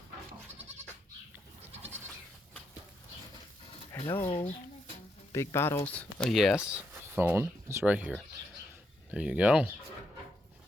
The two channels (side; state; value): both; normal; correlation 0.79